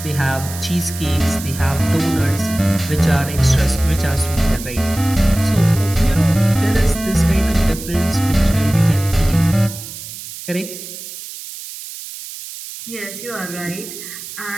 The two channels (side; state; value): right; noise; hiss, 12 dB below the sound